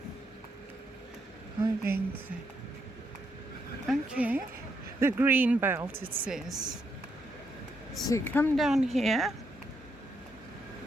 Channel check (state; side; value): normal; both; correlation 0.78